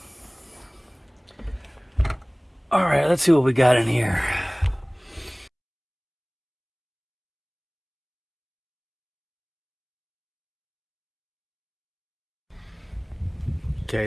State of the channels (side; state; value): both; identical; correlation 1.00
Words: All right, let's see what we got in here. Okay,